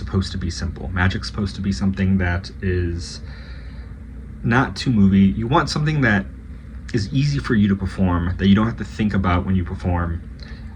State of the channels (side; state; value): both; identical; correlation 1.00